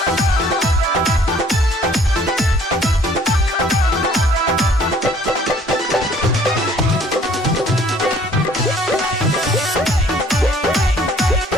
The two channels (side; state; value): both; normal; correlation 0.57